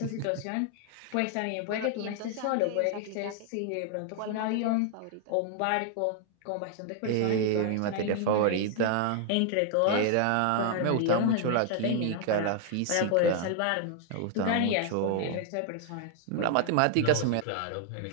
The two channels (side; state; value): both; different; correlation 0.00